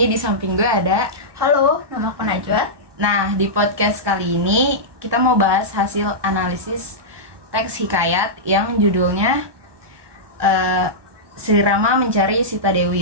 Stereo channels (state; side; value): late; left; 1.2 ms